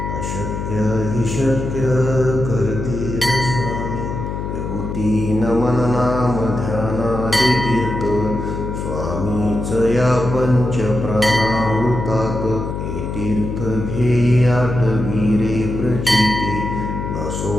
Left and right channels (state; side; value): noise; left; hum, 5 dB below the sound